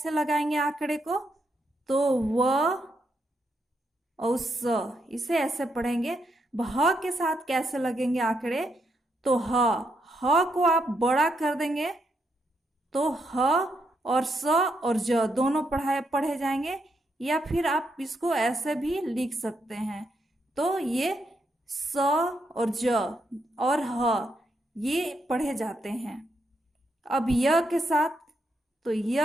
लगाएंगे आंकड़े को, तो व और स, इसे ऐसे पढ़ेंगे। ह के साथ कैसे लगेंगे आंकड़े, तो ह को आप बड़ा कर देंगे, तो ह और स और ज दोनों पढ़े जाएंगे, या फिर आप इसको ऐसे भी लिख सकते हैं, तो ये स और ज और ह ये पढ़े जाते हैं। अब य के साथ, तो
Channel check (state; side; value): normal; both; correlation 0.79